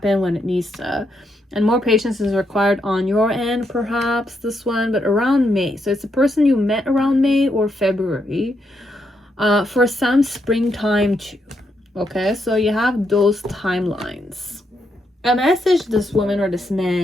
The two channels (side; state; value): both; normal; correlation 0.79